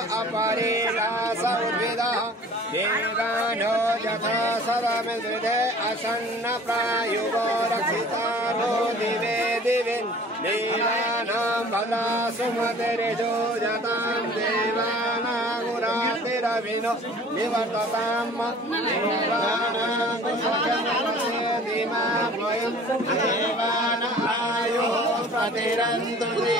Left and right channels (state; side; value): normal; both; correlation 0.48